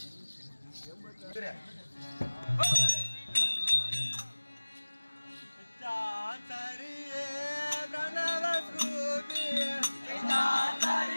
சரியே பிரணவ ஸ்ரூபி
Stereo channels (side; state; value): both; inverted; correlation -1.00